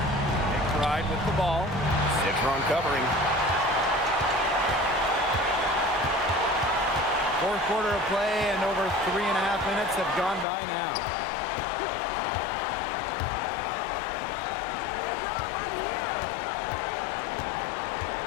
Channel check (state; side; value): drops out; right; at 10.5 s